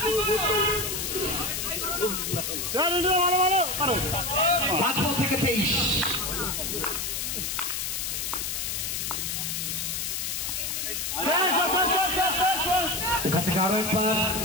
5 বল থেকে 23। এখান থেকে আরো একবার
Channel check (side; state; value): left; noise; hiss, 2 dB below the sound